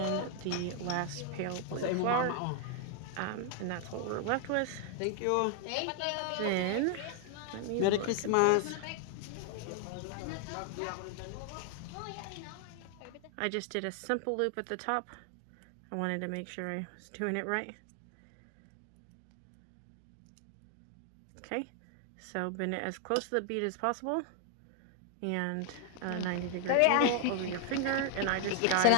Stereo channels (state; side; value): different; both; correlation 0.00